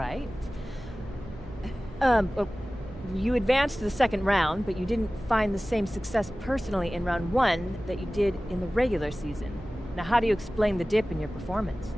You advanced to the second round, but you didn't find the same success personally in round 1 that you did in the regular season. Now, how do you explain the dip in your performance?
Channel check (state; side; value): normal; both; correlation 0.97